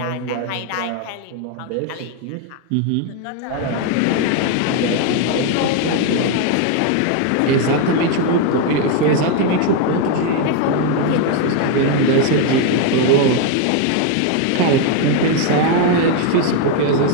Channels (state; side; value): different; both; correlation 0.01